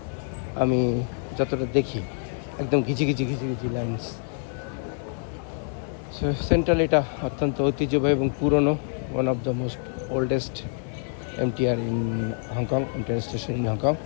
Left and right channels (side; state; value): right; silent; 56 dB below the other